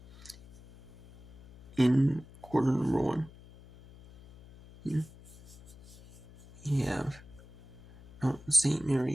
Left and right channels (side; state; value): left; noise; hum, 21 dB below the sound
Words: in quarter number one. Here we have St.